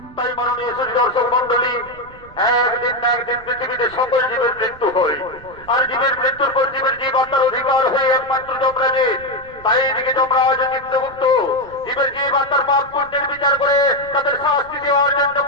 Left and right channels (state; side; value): noise; right; rumble, 22 dB below the sound